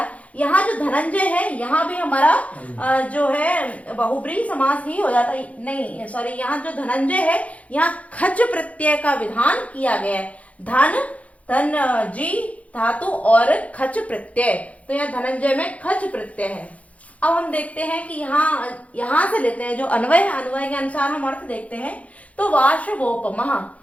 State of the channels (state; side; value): late; right; 0.067 ms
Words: यहाँ जो धनंजय है यहाँ भी हमारा जो है बहुब्रीहि समास ही हो जाता है, नहीं सॉरी, यहाँ जो धनंजय है यहाँ खच प्रत्यय का विधान किया गया है। धन, धन जी धातु और खच प्रत्यय, तो यहाँ धनंजय में खच प्रत्यय है। अब हम देखते हैं कि यहाँ से लेते हैं जो अन्वय है, अन्वय के अनुसार हम अर्थ देखते हैं। तो वाशवोपमः,